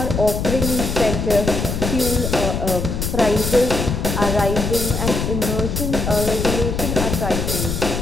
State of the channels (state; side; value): noise; left; rumble, 2 dB below the sound